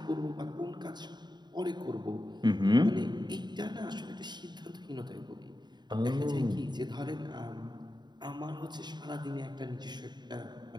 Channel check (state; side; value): late; left; 0.21 ms